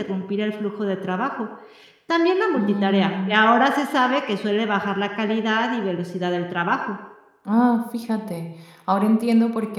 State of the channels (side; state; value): both; identical; correlation 1.00